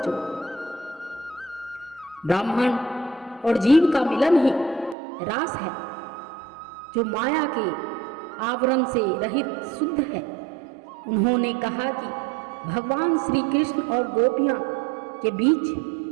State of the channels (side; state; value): left; drops out; at 5.0 s